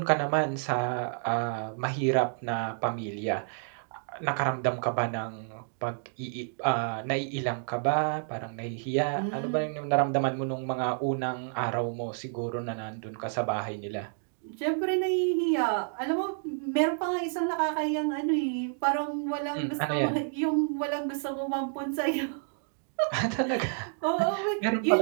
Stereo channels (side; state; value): left; silent; digital silence